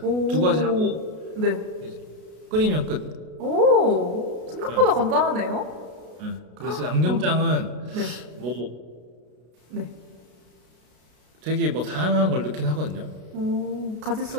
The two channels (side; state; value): left; late; 33 ms